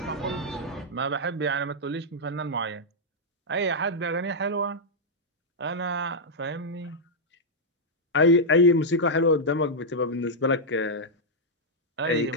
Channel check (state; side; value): normal; both; correlation -0.05